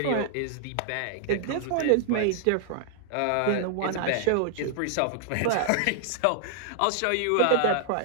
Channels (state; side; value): different; both; correlation -0.01